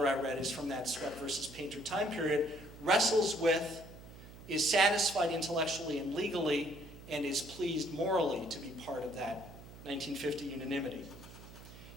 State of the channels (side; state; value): right; noise; hum, 17 dB below the sound